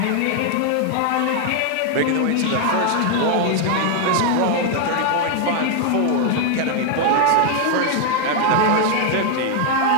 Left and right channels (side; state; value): both; different; correlation 0.00